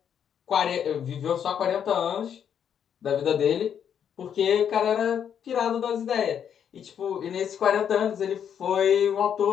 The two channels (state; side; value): quieter; right; 8.5 dB